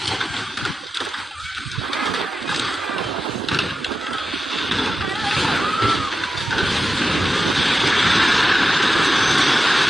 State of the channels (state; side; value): normal; both; correlation 0.92